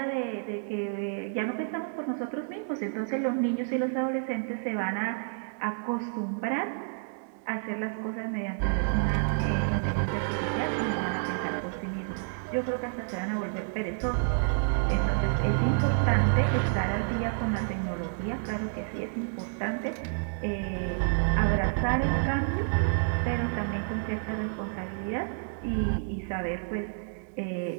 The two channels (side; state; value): left; silent; digital silence